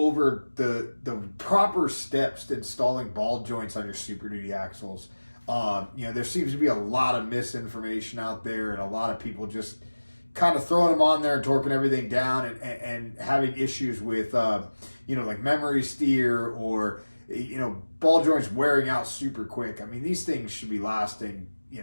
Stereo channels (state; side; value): inverted; both; correlation -1.00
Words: the proper steps to installing ball joints on your Super Duty axles. There seems to be a lot of misinformation out there, and a lot of people just kind of throwing them on there and torquing everything down and having issues with, like memory steer or, ball joints wearing out super quick. I mean, these things should be lasting,